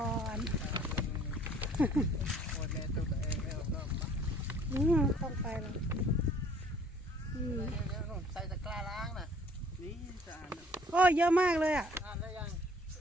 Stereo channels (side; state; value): both; normal; correlation 0.56